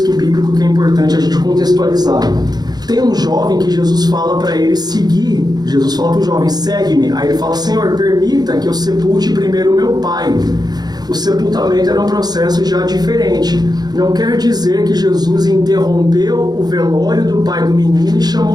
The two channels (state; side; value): late; left; 0.19 ms